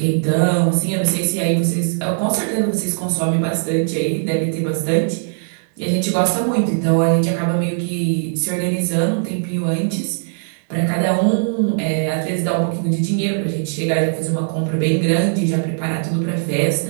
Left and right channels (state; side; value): silent; left; digital silence